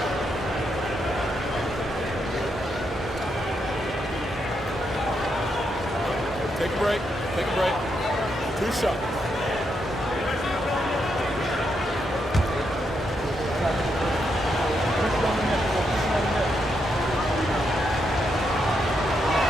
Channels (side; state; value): both; normal; correlation 0.80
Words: Take a break. Take a break. 2 shots.